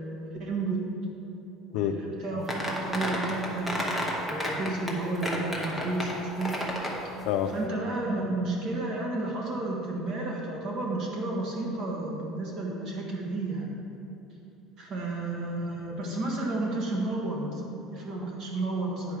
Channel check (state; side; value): normal; both; correlation 0.50